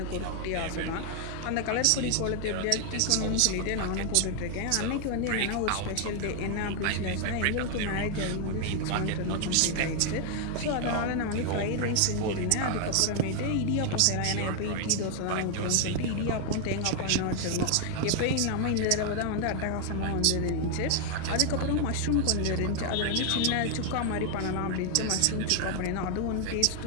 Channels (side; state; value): both; different; correlation 0.01